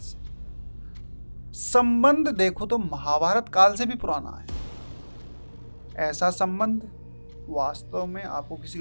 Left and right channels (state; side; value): inverted; both; correlation -1.00